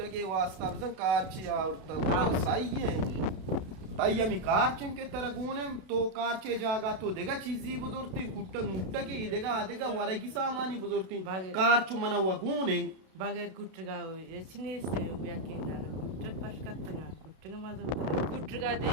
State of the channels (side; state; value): left; late; 32 ms